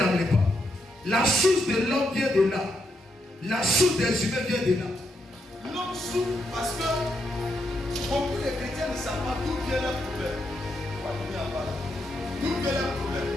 amen. La source de l'homme vient de là. La source des humains vient de là. L'homme souffre parce que beaucoup de chrétiens ne savent pas d'où vient leur problème. D'où vient leur problème?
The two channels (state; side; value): normal; both; correlation 0.80